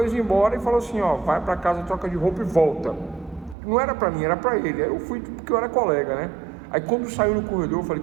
embora e falou assim: ó, vai para casa, troca de roupa e volta. Não era para mim, era para ele. Aí eu fui porque eu era colega, né? Aí quando saiu no corredor, eu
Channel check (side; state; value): left; drops out; at 3.6 s